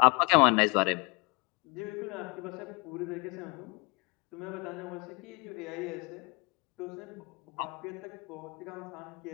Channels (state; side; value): quieter; right; 29.0 dB